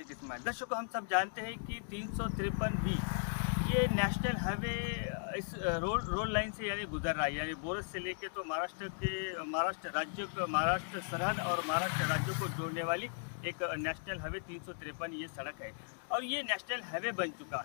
इस्माइल. दर्शकों, हम सब जानते हैं कि 353B ये नेशनल हाईवे इस रोड लाइन से यानी गुजर रहा है. यानी बोरस से लेके तो महाराष्ट्र सरहद और महाराष्ट्र राज्यों को जोड़ने वाली एक नेशनल हाईवे 353 ये सड़क है और ये नेशनल हाईवे बन चुका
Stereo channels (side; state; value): right; silent; digital silence